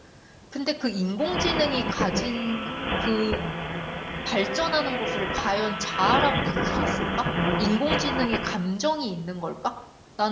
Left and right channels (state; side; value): identical; both; correlation 1.00